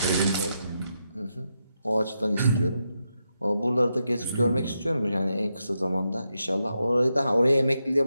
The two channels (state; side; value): inverted; both; correlation -0.85